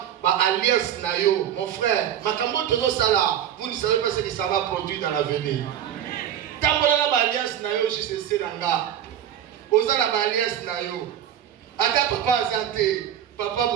alliance nayo, mon frère, vous ne savez pas ce que ça va produire dans l'avenir. Tant que alliance nayo, je sais nanga. Osala alliance nayo. Aka papa azate, papa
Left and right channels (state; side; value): quieter; left; 10.2 dB